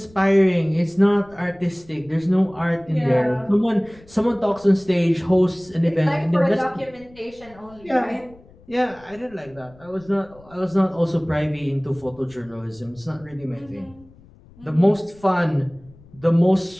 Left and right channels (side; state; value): left; noise; rumble, 25 dB below the sound